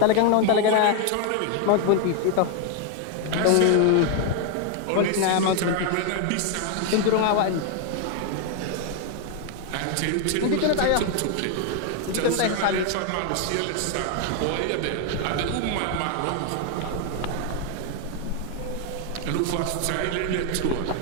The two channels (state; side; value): different; both; correlation 0.00